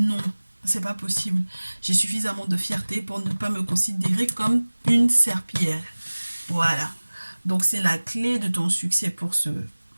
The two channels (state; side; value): inverted; both; correlation -1.00